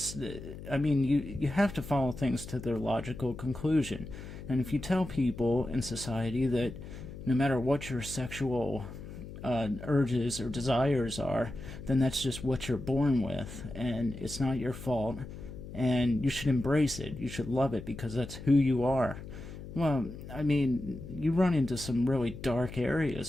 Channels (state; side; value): noise; left; hum, 12 dB below the sound